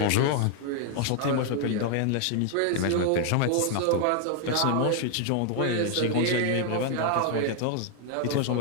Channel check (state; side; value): different; both; correlation 0.00